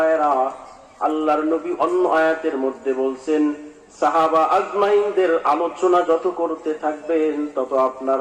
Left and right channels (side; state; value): both; identical; correlation 1.00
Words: আল্লাহর নবী অন্য আয়াতের মধ্যে বলছেন, সাহাবা আজমাইনদের আলোচনা যত করতে থাকবেন তত আপনার